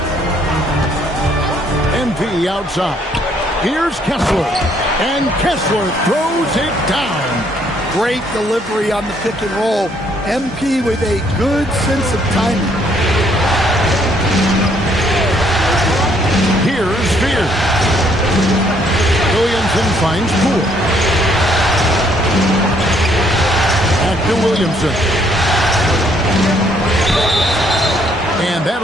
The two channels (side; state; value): both; normal; correlation 0.67